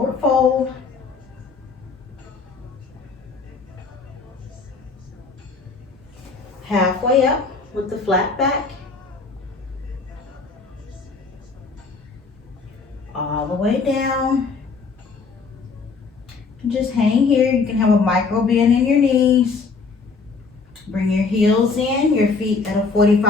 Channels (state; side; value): quieter; right; 4.5 dB